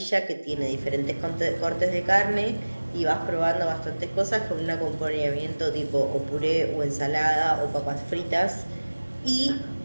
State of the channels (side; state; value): both; inverted; correlation -1.00